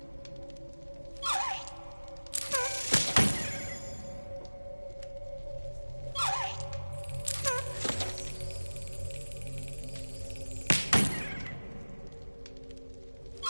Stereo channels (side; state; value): both; inverted; correlation -1.00